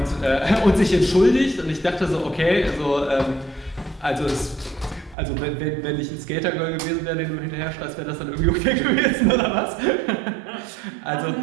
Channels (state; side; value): drops out; left; at 5.2 s